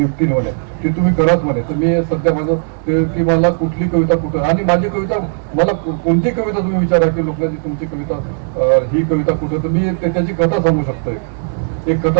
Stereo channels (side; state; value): left; silent; digital silence